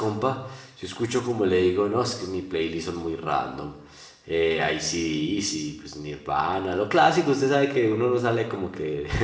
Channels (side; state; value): both; identical; correlation 1.00